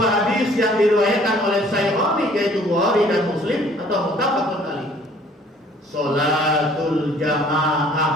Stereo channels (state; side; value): normal; both; correlation 0.56